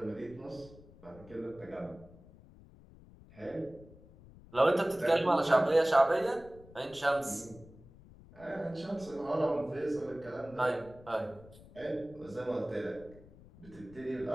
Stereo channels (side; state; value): left; noise; rumble, 21 dB below the sound